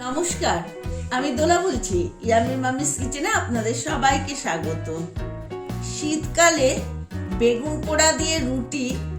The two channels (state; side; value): identical; both; correlation 1.00